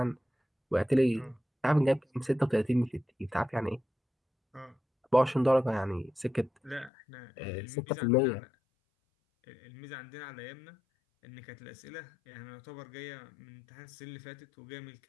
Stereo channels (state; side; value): drops out; right; at 6.9 s